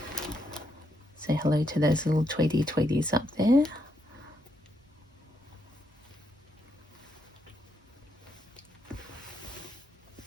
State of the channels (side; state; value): both; normal; correlation 0.79